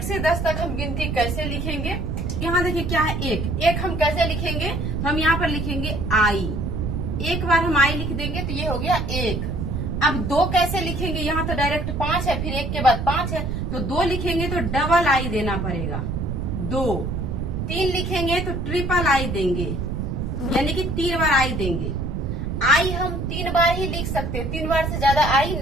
से 10 तक हम गिनती कैसे लिखेंगे। यहाँ देखिए क्या है 1 हम कैसे लिखेंगे, तो हम यहाँ पर लिखेंगे आई। एक बार हम आई लिख देंगे तो ये हो गया 1। अब 2 कैसे लिखेंगे, यहाँ तो डायरेक्ट 5 है, फिर 1 के बाद 5 है, तो 2 लिखेंगे तो डबल आई देना पड़ेगा 2। 3 लिखेंगे तो ट्रिपल आई देंगे, यानी कि 3 बार आई देंगे। आई हम 3 बार ही लिख सकते हैं, 3 बार से ज्यादा आई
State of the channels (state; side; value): noise; right; rumble, 2 dB below the sound